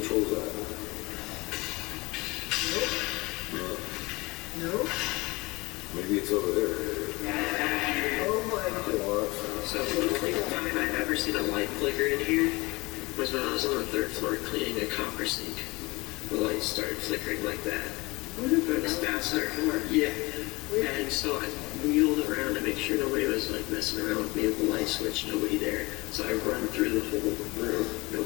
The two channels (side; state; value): right; quieter; 23.0 dB